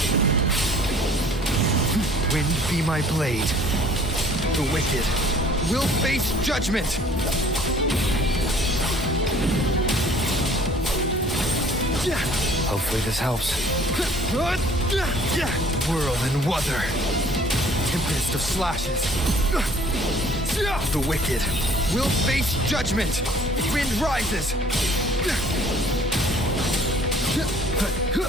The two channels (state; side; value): normal; both; correlation 0.53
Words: Wind be my blade. The wicked will face judgment! Hopefully this helps. Whirl and Wuther. Tempest of slashes. The wicked will face judgment. Wind rises.